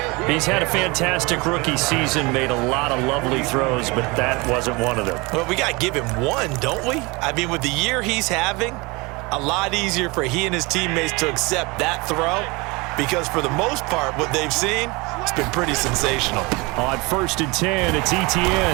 He's had a fantastic rookie season, made a lot of lovely throws, but that wasn't one of them. Well, we got to give him one, don't we? I mean, with the year he's having, a lot easier for he and his teammates to accept that throw, because for the most part, what they've seen, it's been pretty sensational. On 1st and 10, it's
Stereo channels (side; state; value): left; quieter; 25.7 dB